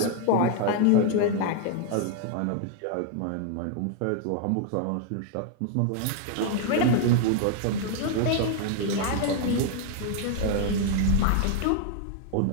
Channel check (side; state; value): both; different; correlation 0.00